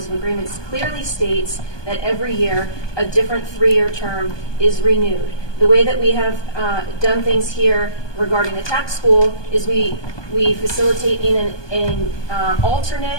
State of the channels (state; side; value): late; right; 1.2 ms